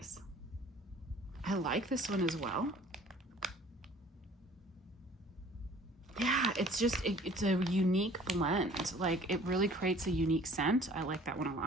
I like this one as well. Yeah, it's a unique blend. Like it really creates a unique scent. I like that one a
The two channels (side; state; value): both; normal; correlation 0.51